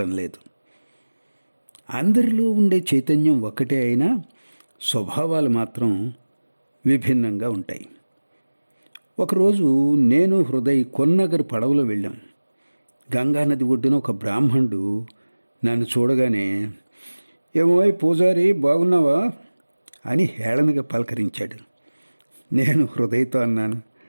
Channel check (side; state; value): both; inverted; correlation -1.00